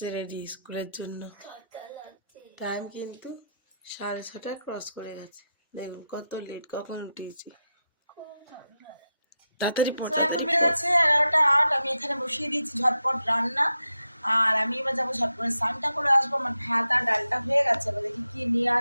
রেডি স্কুলের জন্য। টাইম কিন্তু 6:30 ক্রস করে গেছে। দেখুন কত লেট, কখন উঠেছি। তাড়াতাড়ি পড়ো। এখন বেড়ে গেছে 11:08। আমি এখানে বসিয়ে দিয়েছি ঝটপট রান্না। আর আমি এবার যাবো ঝট করে স্নানটা করে আসবো। আমার ভাত আর ডালটা হয়ে গেছে, এবার দেখি কি নিয়ে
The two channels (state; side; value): inverted; both; correlation -0.87